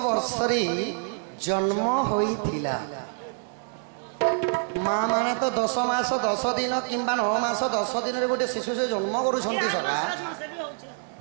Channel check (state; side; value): silent; left; 59 dB below the other